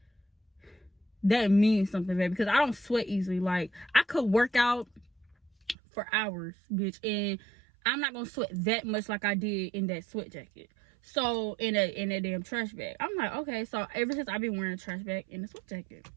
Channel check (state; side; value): drops out; left; at 5.8 s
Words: that means something, baby, because I don't sweat easily. Like, I could work out for hours, bitch, and I'm not gonna sweat that much like I did in that sweat jacket. So in a damn trash bag. I'm like, okay. So ever since I've been wearing a trash bag and a sweat jacket.